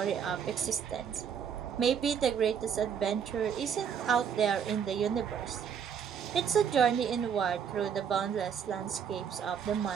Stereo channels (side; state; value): left; quieter; 7.5 dB